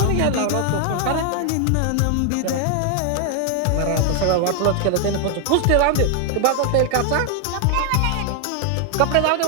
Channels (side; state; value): both; different; correlation 0.00